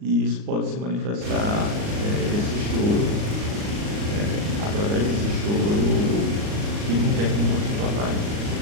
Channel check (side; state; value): left; late; 39 ms